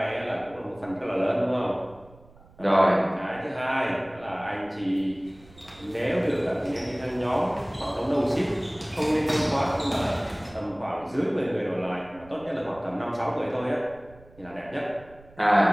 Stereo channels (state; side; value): noise; right; rumble, 24 dB below the sound